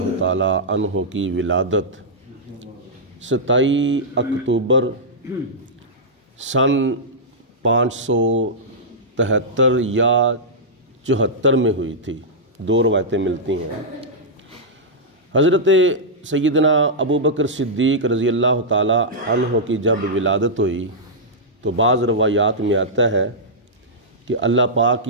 تعالی عنہ کی ولادت 27 اکتوبر سن 573 یا 74 میں ہوئی تھی۔ دو روایتیں ملتی ہیں۔ حضرت سیدنا ابو بکر صدیق رضی اللہ تعالی عنہ کی جب ولادت ہوئی تو بعض روایات میں آتا ہے کہ اللہ پاک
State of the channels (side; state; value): both; normal; correlation -0.11